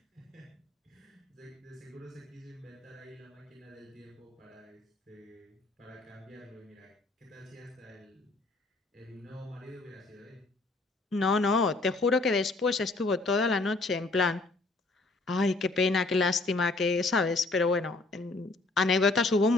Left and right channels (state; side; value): quieter; right; 3.3 dB